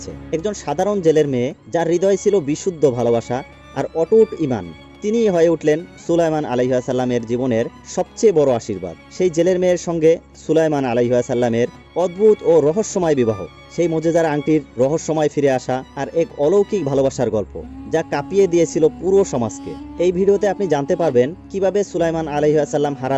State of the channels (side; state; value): both; identical; correlation 1.00